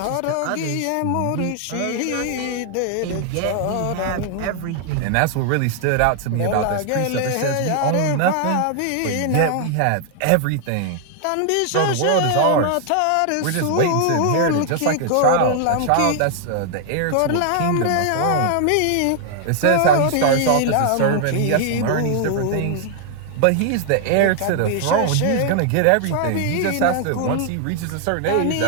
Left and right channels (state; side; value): different; both; correlation 0.00